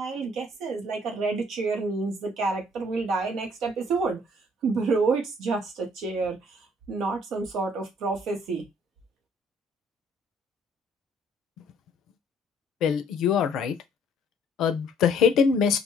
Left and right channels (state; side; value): normal; both; correlation 0.60